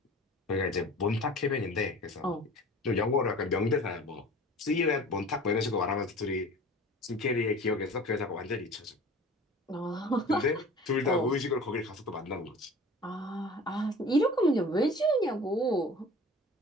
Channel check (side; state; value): both; normal; correlation 0.42